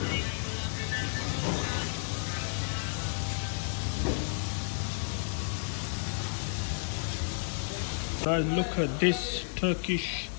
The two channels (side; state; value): right; silent; digital silence